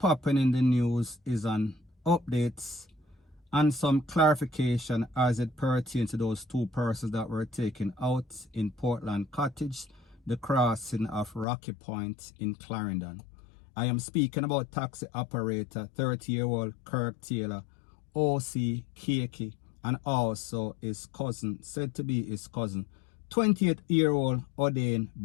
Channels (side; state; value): right; drops out; at 11.5 s